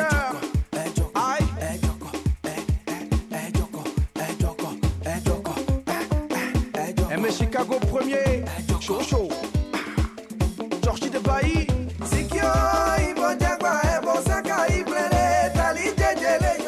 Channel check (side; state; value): both; identical; correlation 1.00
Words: Aïe. M Chicago premier. Chaud chaud. Georgie de Bailly. Sikyo ibo jagba ebo seka ibrele. Tali jejele